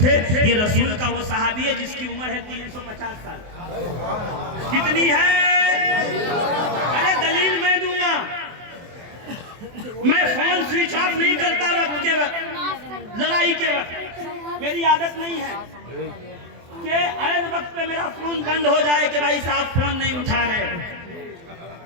ये रसूल का वो सहाबी है जिसकी उम्र है 350 साल। कितनी है? अरे दलील मैं दूंगा, मैं फोन स्विच ऑफ नहीं करता वक्त के वक्त, लड़ाई के वक्त, मेरी आदत नहीं है कि ऐन वक्त पे मेरा फोन बंद हो जाए कि भाई साहब फोन नहीं उठा रहे।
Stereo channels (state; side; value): late; left; 24 ms